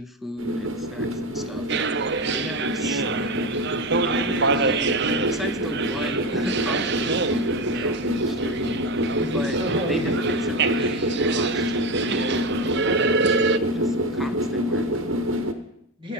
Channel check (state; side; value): normal; both; correlation 0.17